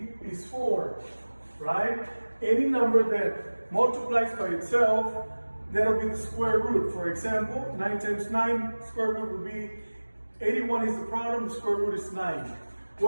is 4, right? Any number that multiplies by itself, that'll be the square root. For example, 9 times 9, square root would be 81 is the problem, the square root is 9.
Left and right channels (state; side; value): inverted; both; correlation -1.00